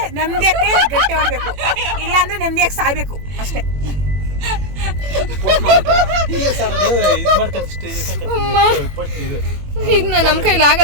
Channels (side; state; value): left; late; 21 ms